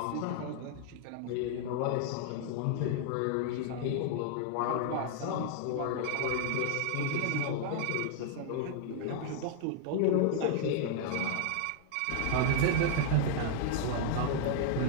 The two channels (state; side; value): different; both; correlation 0.00